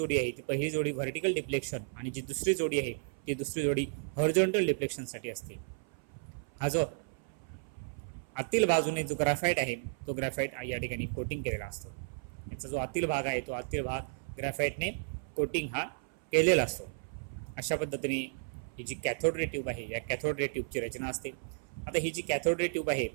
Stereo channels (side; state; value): left; silent; 55 dB below the other